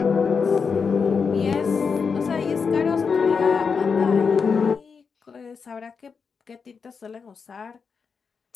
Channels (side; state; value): right; quieter; 5.6 dB